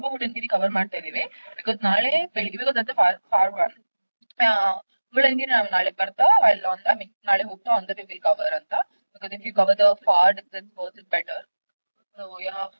Budangiri cover ಮಾಡ್ತಾ ಇದೀವಿ because ನಾಳೆ ಬೆಳಿಗ್ಗೆ because ಅದ for one Budangiri ನಾವು ನಾಳೆ ಬರ್ತಾ ಅಲ್ಲಿ ಐ ಮೀನ್ ನಾಳೆ ಹೋಗ್ತಾ on the way will cover ಅಂತ because if you cover the far distance was it better so yeah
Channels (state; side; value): inverted; both; correlation -1.00